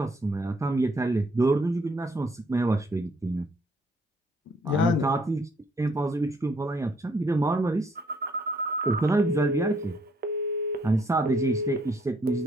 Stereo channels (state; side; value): normal; both; correlation 0.67